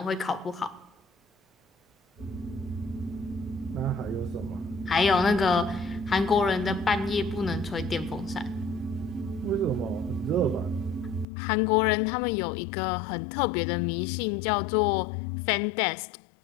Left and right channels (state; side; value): drops out; right; at 11.2 s